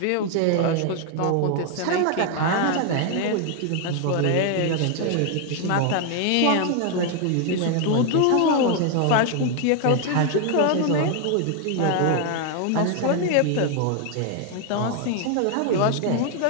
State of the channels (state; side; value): different; both; correlation 0.01